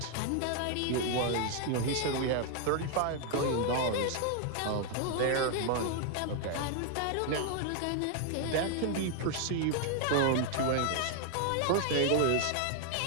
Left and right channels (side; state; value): both; different; correlation 0.00